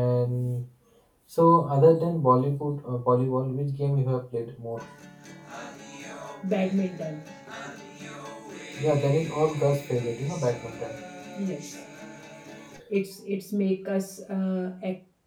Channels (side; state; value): both; identical; correlation 1.00